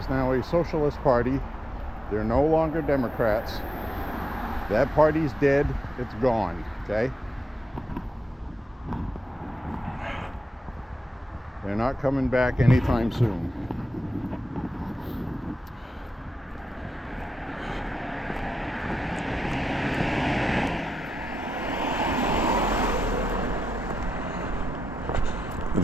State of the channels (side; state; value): both; normal; correlation 0.87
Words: now a socialist party. They're no longer Democrats. That party's dead. It's gone, okay? They're not coming back anytime soon.